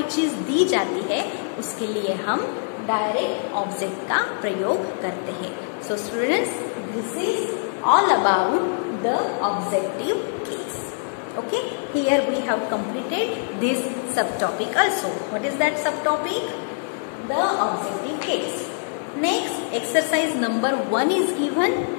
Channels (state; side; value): silent; right; 63 dB below the other